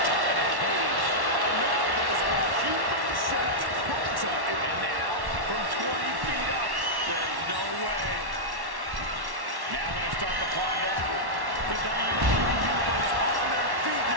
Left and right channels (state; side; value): late; left; 1.1 ms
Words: top of the cage. And now there's a human-shaped crater. And now, from 20 feet up, there's no way. Now going to start the climb down. The WWE Universe on their feet